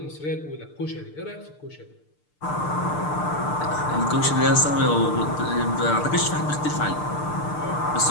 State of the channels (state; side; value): late; right; 6.7 ms